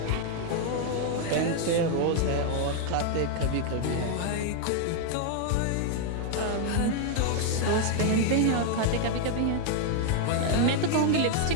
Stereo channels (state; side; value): different; both; correlation 0.00